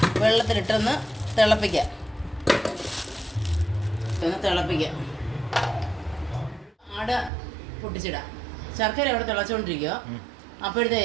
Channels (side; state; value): left; drops out; at 7.3 s